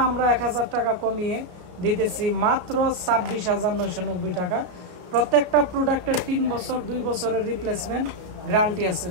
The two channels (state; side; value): late; left; 33 ms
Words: আমরা 1000 টাকা কমিয়ে দিতেছি মাত্র 26,990 টাকা। প্রত্যেকটা প্রোডাক্টের 3 বছর 2 বছরের রিপ্লেসমেন্ট গ্যারান্টি আছে।